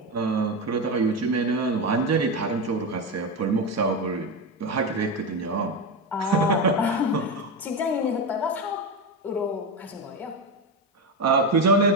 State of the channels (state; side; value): normal; both; correlation 0.14